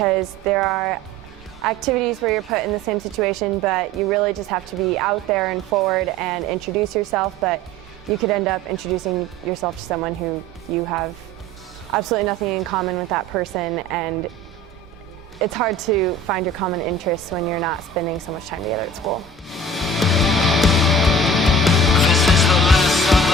there are activities where you're put in the same situation, but you really just have to be out there and forward and introduce yourself, but you could end up introducing yourself to someone who you have absolutely nothing in common with that person, and it's hard to find your common interests when you're not spending so much time together at school.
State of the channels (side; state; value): both; normal; correlation 0.44